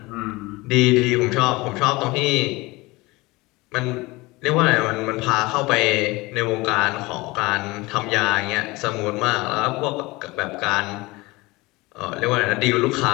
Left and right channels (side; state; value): right; quieter; 22.4 dB